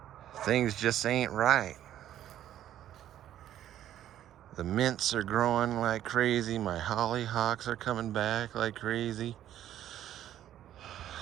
Things just ain't right. The mints are growing like crazy. My hollyhocks are coming back like crazy.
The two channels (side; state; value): left; quieter; 11.7 dB